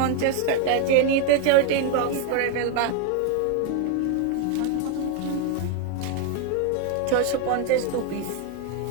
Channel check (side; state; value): both; different; correlation 0.01